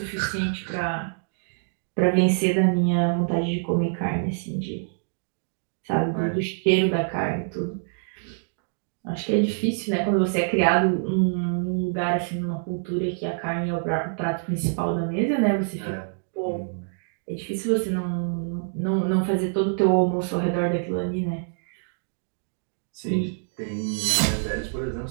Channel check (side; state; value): left; silent; digital silence